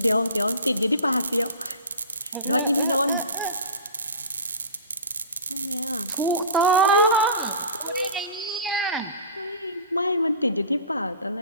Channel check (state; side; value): inverted; both; correlation -0.36